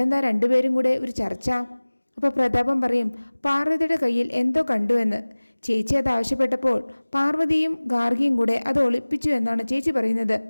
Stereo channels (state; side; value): inverted; both; correlation -1.00